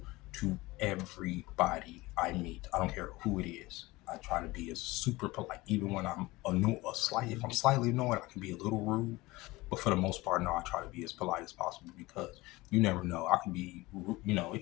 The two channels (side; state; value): right; quieter; 20.6 dB